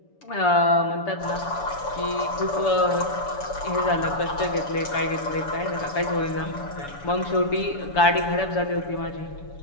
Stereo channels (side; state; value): right; late; 7.0 ms